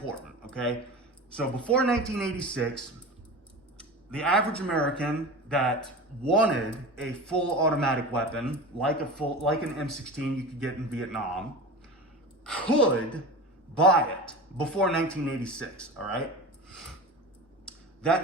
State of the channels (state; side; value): normal; both; correlation 0.31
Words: okay? So before 1986, the average American that wanted a full automatic weapon, like an M16 you could get in Vietnam, could buy it before 1986, all right?